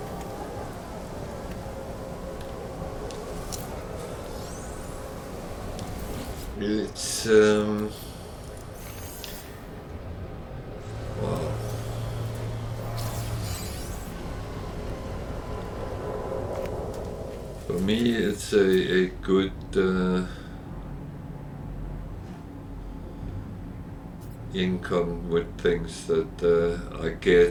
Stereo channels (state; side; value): identical; both; correlation 1.00